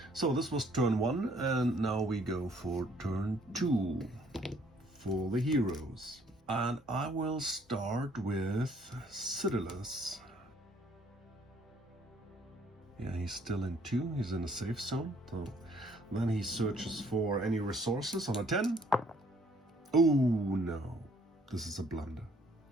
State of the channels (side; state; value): both; normal; correlation 0.62